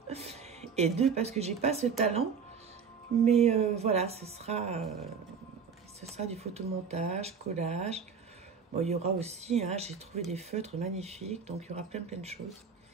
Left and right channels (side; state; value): left; quieter; 6.1 dB